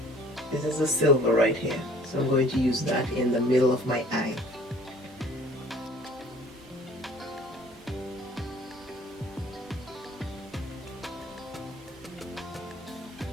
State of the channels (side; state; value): both; normal; correlation 0.52